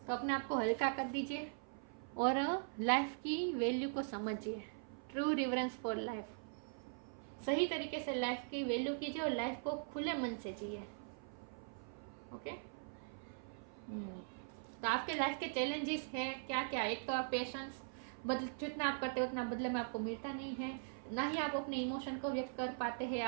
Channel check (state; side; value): silent; left; 50 dB below the other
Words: तो अपने आप को हल्का कर दीजिए और लाइफ की वैल्यू को समझिए। ट्रू रिवरेंस फॉर लाइफ, सही तरीके से लाइफ की वैल्यू कीजिए और लाइफ को खुले मन से जिए। ओके। तो आपके लाइफ के चैलेंजेस है क्या क्या? एक तो आप पेशेंस, बदल जितना आप करते हो उतना बदले में आपको मिलता नहीं है, ना ही आप अपने इमोशन को व्यक्त कर पाते हैं।